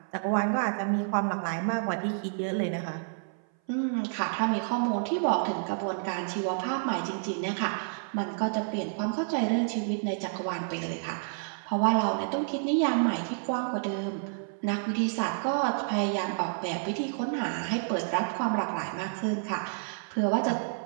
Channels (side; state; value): left; silent; 57 dB below the other